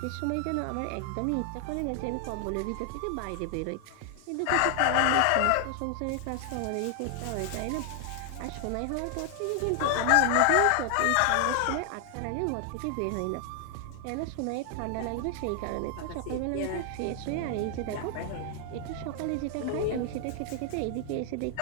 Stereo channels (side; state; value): both; different; correlation 0.00